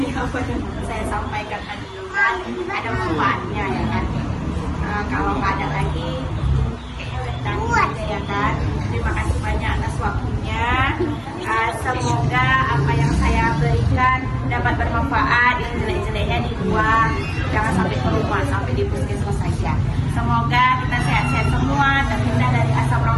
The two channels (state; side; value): identical; both; correlation 1.00